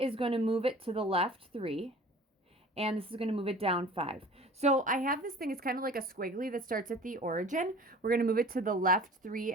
going to move it to the left 3. And this is going to move it down 5. So I have this thing, it's kind of like a squiggly that starts at the origin. We're going to move it to the left 3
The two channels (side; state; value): both; normal; correlation 0.44